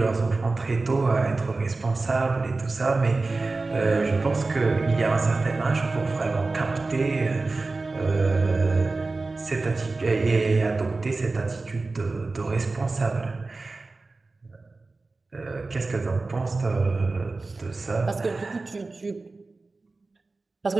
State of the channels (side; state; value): left; quieter; 3.6 dB